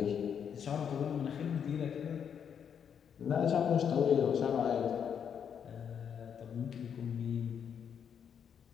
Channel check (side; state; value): right; quieter; 7.8 dB